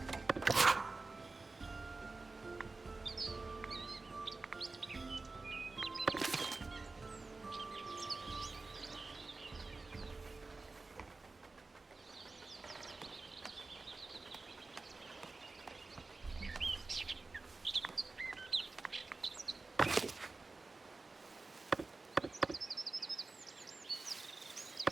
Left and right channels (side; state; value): left; quieter; 3.6 dB